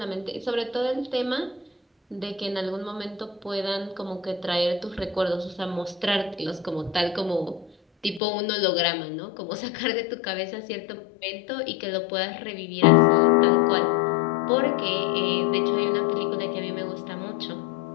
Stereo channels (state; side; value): drops out; right; at 8.2 s